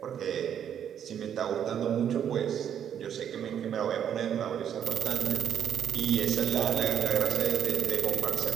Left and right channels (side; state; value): left; quieter; 9.1 dB